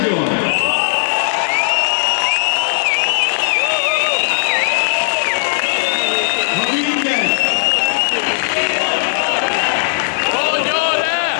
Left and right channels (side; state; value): right; silent; digital silence